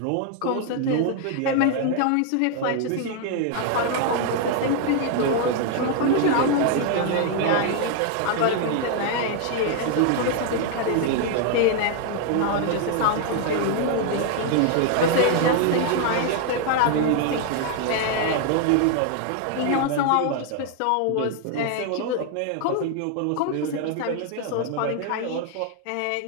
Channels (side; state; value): both; different; correlation 0.00